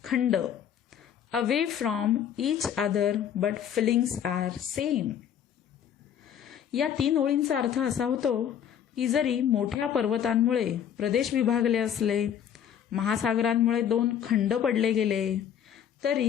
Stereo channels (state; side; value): quieter; right; 9.1 dB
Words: khand, away from each other but feelings are same. या 3 ओळींचा अर्थ असा होतो की जरी मोठ्या पर्वतांमुळे प्रदेश विभागले असले, महासागरांमुळे 2 खंड पडले गेले,